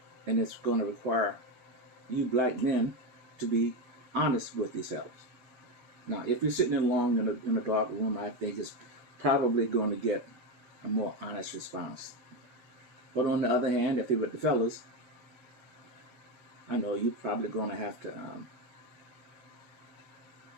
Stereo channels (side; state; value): left; late; 12 ms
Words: and it's going to require you black men to be honest with yourselves. Now, if you're sitting alone in a dark room, I think it's probably going to get a more honest response. But on the other hand, if you're with the fellas, I know you're probably going to have to